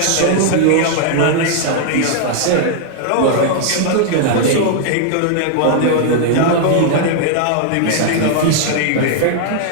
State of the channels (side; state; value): both; different; correlation -0.01